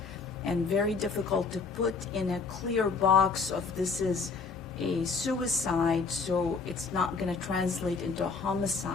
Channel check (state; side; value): quieter; right; 4.7 dB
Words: and very difficult to put in a clear box of this is a suicide, so it's not going to translate into a